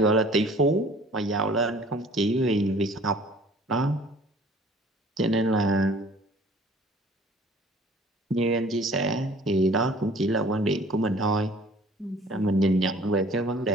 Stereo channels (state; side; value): normal; both; correlation 0.51